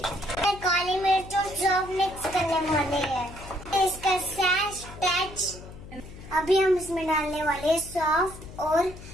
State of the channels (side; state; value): left; noise; hum, 15 dB below the sound